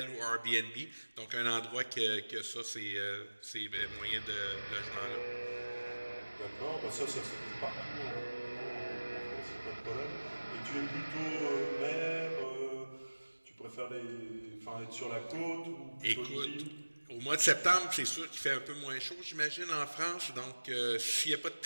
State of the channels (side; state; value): both; inverted; correlation -1.00